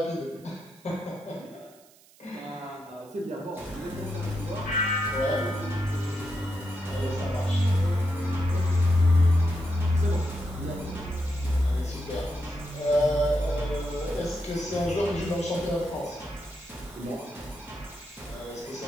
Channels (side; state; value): right; noise; hiss, 27 dB below the sound